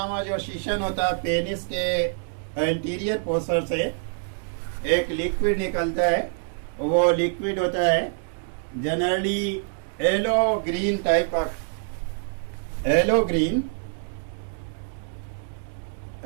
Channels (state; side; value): silent; left; digital silence